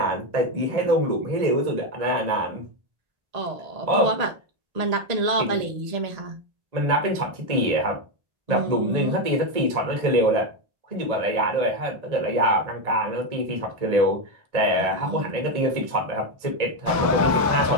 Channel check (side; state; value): left; late; 1.8 ms